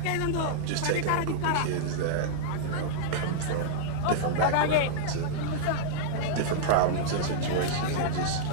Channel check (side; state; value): both; different; correlation -0.02